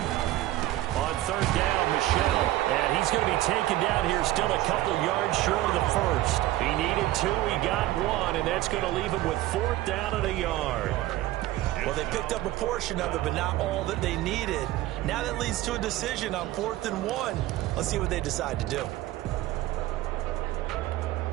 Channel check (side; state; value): left; quieter; 15.8 dB